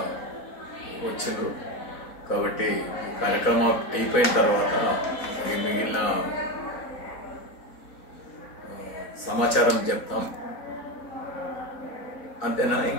వచ్చిండ్రు కాబట్టి కార్యక్రమం అయిపోయిన తర్వాత మిగిలిన సమాచారం చెప్తాం. అంతేనా,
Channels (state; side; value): late; right; 4.0 ms